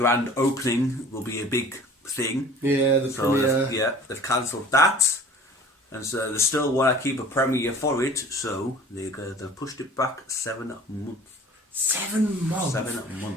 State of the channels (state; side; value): normal; both; correlation 0.46